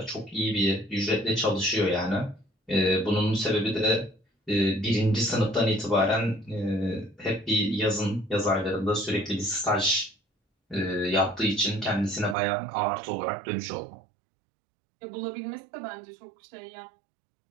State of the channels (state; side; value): drops out; left; at 12.4 s